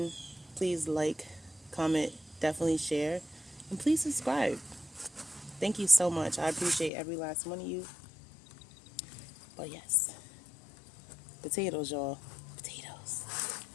Please like, comment, definitely share, and please subscribe. Thank you so much. I appreciate every last one of you. But yes, potatoes, y'all. Potatoes.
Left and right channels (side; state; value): right; drops out; at 6.9 s